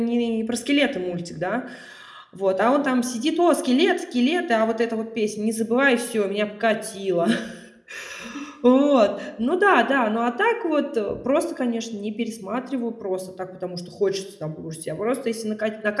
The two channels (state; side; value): identical; both; correlation 1.00